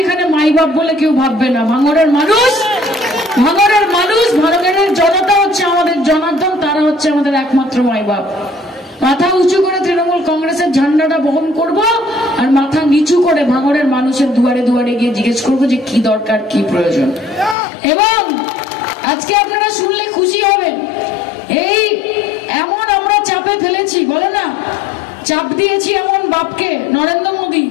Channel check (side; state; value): right; drops out; at 17.6 s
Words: এখানে মাই বাপ বলে কেউ ভাববে না। ভাঙড়ের মানুষ, ভাঙড়ের জনতা হচ্ছে আমাদের জনার্দন, তারা হচ্ছে আমাদের একমাত্র মাই বাপ। মাথা উঁচু করে তৃণমূল কংগ্রেসের ঝান্ডাটা বহন করব, আর মাথা নিচু করে ভাঙড়ের মানুষের দুয়ারে দুয়ারে গিয়ে জিজ্ঞেস করব যে কি দরকার, কি প্রয়োজন। এবং আজকে আপনারা শুনলে খুশি হবেন, এই এমন আমরা চাপে ফেলেছি, বলে না চাপ দিয়েছি এমন বাপকে, নরেন্দ্র মোদী